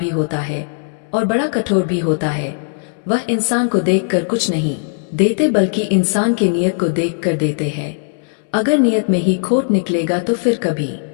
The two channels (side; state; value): right; silent; digital silence